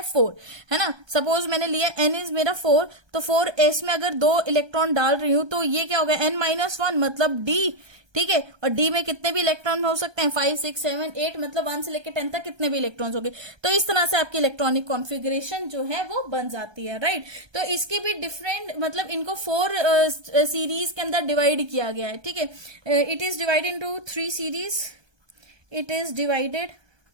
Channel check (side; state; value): left; late; 1.3 ms